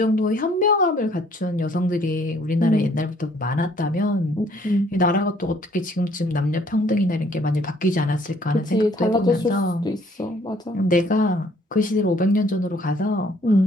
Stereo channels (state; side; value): normal; both; correlation 0.61